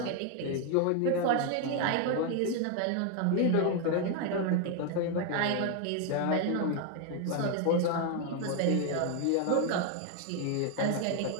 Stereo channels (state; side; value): different; both; correlation 0.01